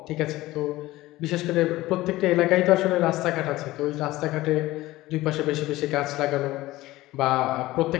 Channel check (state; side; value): quieter; right; 17.7 dB